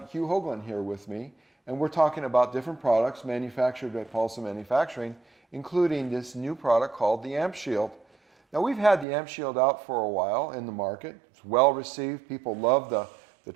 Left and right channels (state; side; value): drops out; left; at 9.1 s